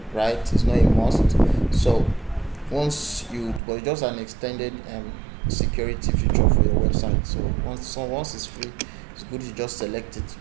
right? It's not a must. So but it's just an extended security feature for your website. So once it's free, it's good to just select it.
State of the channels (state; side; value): drops out; left; at 3.6 s